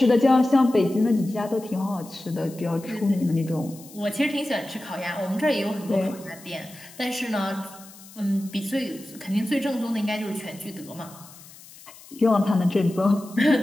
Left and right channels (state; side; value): noise; left; hiss, 20 dB below the sound